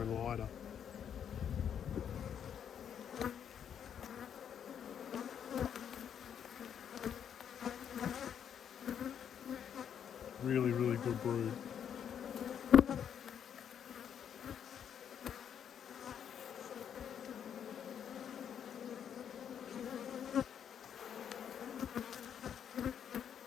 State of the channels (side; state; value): right; quieter; 8.6 dB